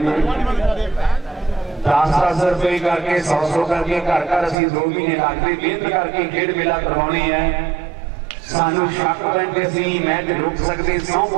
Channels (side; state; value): left; drops out; at 4.5 s